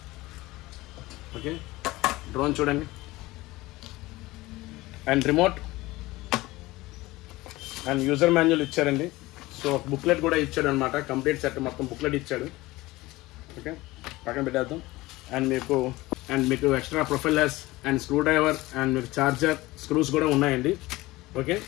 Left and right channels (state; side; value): quieter; right; 19.6 dB